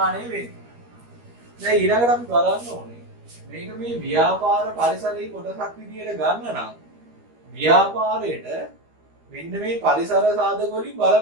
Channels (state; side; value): late; left; 13 ms